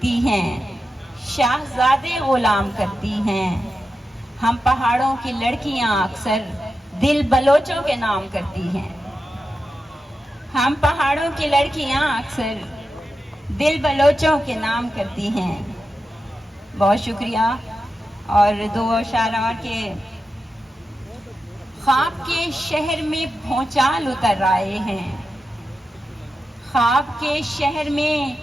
ہیں، شاہزادے غلام کرتی ہیں، ہم پہاڑوں کی لڑکیاں اکثر دل بلوچوں کے نام کرتی ہیں، ہم پہاڑوں کی لڑکیاں اکثر دل بلوچوں کے نام کرتی ہیں۔ بہت شکریہ۔ اور دو اشعار اور کے خواب کے شہر میں بھونچال اتر آئے ہیں، خواب کے شہر میں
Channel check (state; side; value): normal; both; correlation 0.90